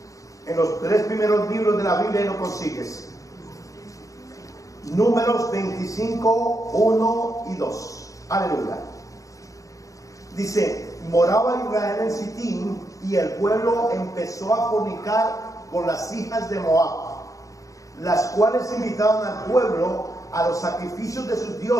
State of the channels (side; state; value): right; late; 0.16 ms